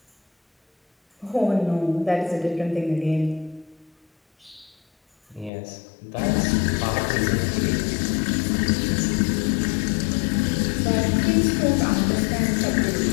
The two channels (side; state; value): right; drops out; at 5.5 s